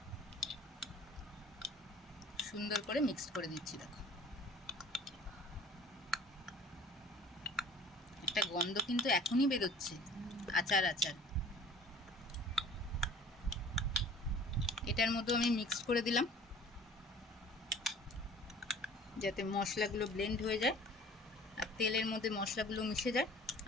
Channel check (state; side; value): normal; both; correlation 0.47